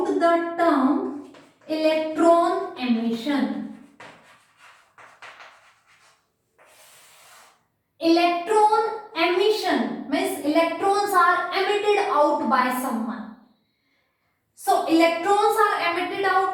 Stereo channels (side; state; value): both; identical; correlation 1.00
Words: the term electron emission. Electron emission means electrons are emitted out by someone. So electrons are emitted